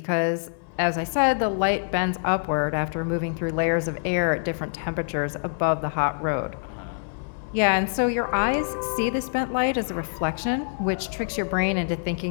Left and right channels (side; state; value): right; silent; 61 dB below the other